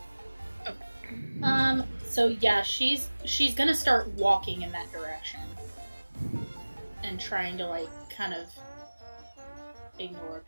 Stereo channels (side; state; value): both; inverted; correlation -1.00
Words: So yeah, she's gonna start walking in that direction and trying to like kind of ignore